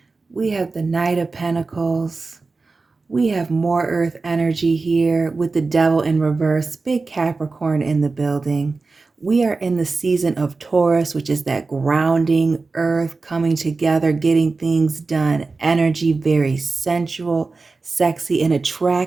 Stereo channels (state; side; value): quieter; left; 3.9 dB